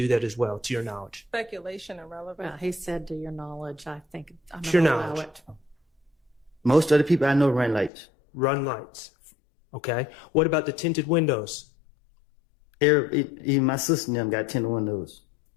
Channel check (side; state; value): right; drops out; at 7.9 s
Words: that as well, to your knowledge? Speculation and relevance. Well, he said to your knowledge, I think I'm To your going to allow knowledge. it. Most of the people I know run lights. Run lights. Okay. What about the tinted windows? Even my sister and them got tinted windows.